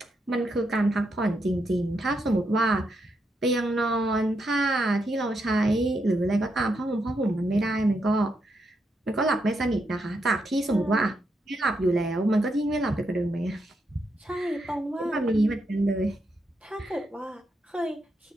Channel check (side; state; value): both; normal; correlation 0.81